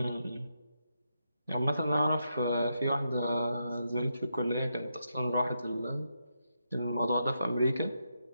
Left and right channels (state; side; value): inverted; both; correlation -0.83